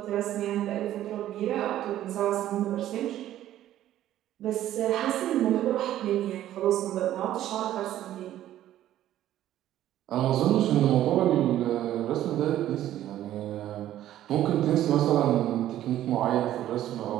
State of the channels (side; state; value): left; quieter; 12.8 dB